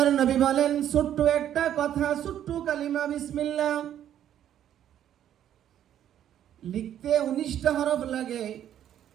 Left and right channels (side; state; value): left; quieter; 10.7 dB